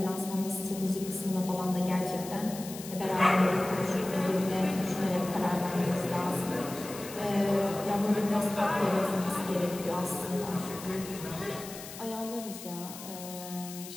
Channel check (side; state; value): left; noise; hiss, 13 dB below the sound